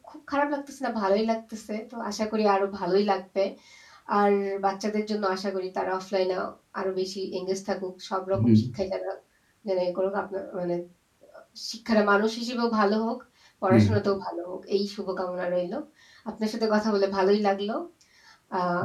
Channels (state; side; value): identical; both; correlation 1.00